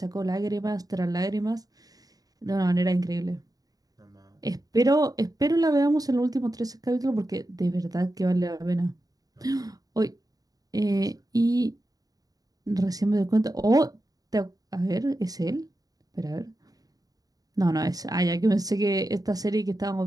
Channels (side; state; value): left; late; 0.18 ms